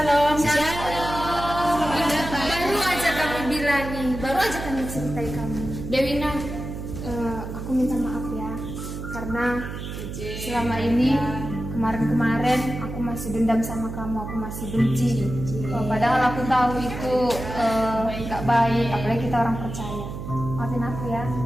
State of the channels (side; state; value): right; noise; hum, 8 dB below the sound